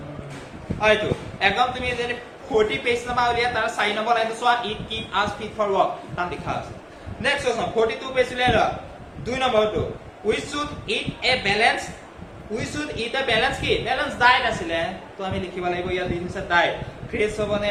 আইটো একদম তুমি যদি 40 পেজ নাম্বাৰ উলিয়া তাৰ 4 নম্বৰ লাইনটো চোৱা it keep us fit for work তাম লিখা আছে নেক্সট কোৱেশ্চন 42 পেজ উলিয়া 2 নম্বৰটো we should eat a balance কি balance diet আছিলে তো আমি লিখিব লাগিব ইয়াত দিছে diet ফ্ৰেছ হবনে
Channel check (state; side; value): identical; both; correlation 1.00